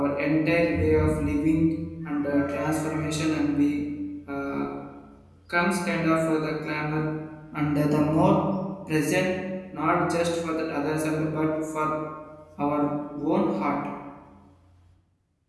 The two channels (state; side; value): identical; both; correlation 1.00